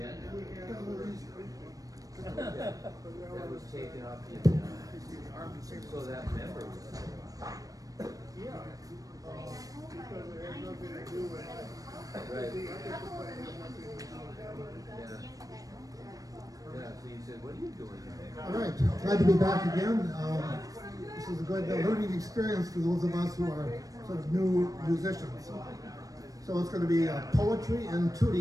That was taken off the agenda. So that member was. Yeah. Right. Yeah, so you said, what are you doing here? All right, glad to be back again. This is a good learning experience for those of us who are sort of new musicians. So it's going to be poetry and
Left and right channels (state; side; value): late; left; 0.17 ms